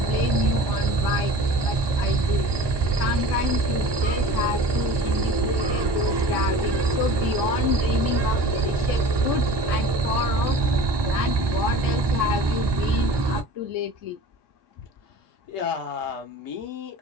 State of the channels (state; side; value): late; left; 1.2 ms